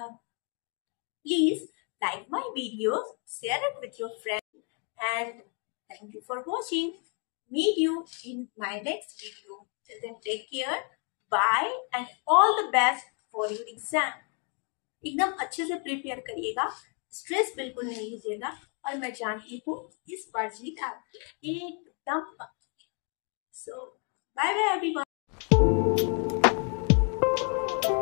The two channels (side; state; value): right; quieter; 38.0 dB